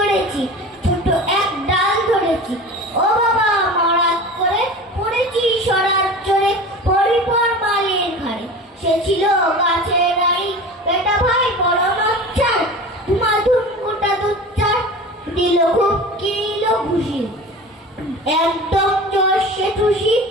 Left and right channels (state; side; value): normal; both; correlation 0.35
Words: ছোট এক ডাল ধরেছি, ও বাবা মরাত করে পড়েছি সরার চড়ে, পরিপর মালের ঘাড়ে, সে ছিল গাছের রানী, বেটা ভাই বড় নচ্ছার, ধুমাধুম গোটা দুচ্চার, দিল খুব কিল ঘুষি, একদম জোরসে ঠুসি,